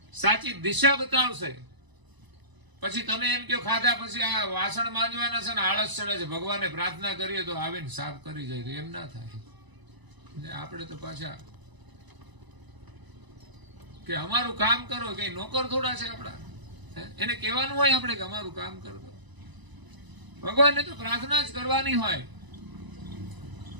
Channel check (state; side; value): late; left; 1.0 ms